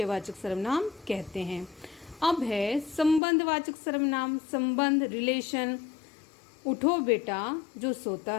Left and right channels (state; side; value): drops out; right; at 3.2 s